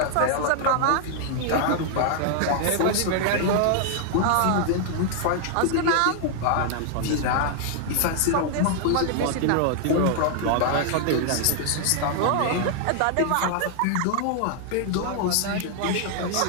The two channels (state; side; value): different; both; correlation 0.00